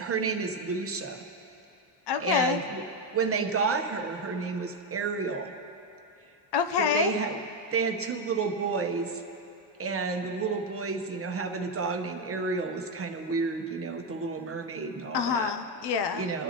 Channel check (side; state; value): both; normal; correlation 0.08